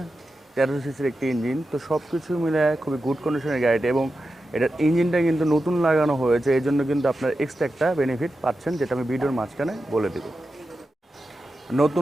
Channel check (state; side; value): normal; both; correlation 0.91